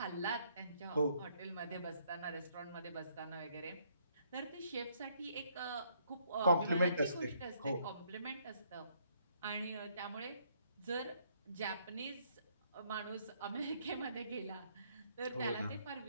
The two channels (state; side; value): inverted; both; correlation -0.69